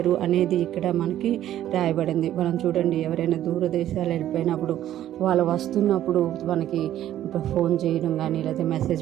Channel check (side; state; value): left; quieter; 12.2 dB